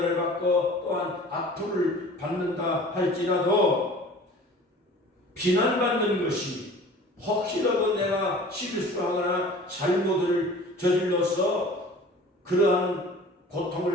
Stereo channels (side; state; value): both; normal; correlation 0.44